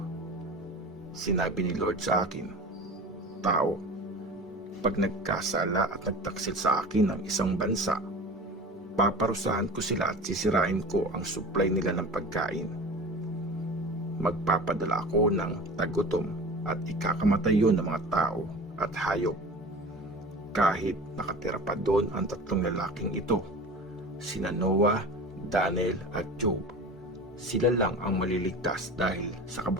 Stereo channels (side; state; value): both; normal; correlation 0.35